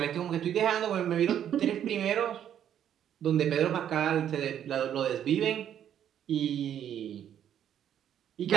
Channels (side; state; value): left; quieter; 9.9 dB